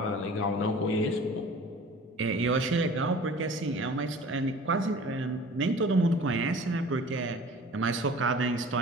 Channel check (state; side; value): normal; both; correlation 0.44